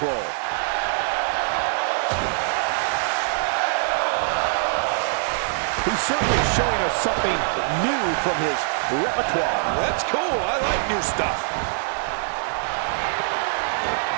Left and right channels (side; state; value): left; silent; 58 dB below the other